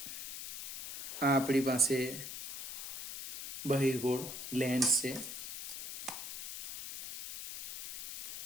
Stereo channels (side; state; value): left; noise; hiss, 7 dB below the sound